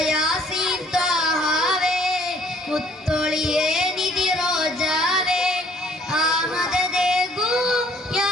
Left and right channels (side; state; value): both; normal; correlation 0.60